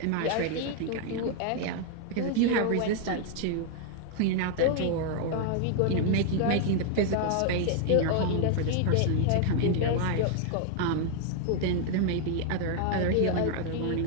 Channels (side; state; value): both; different; correlation 0.00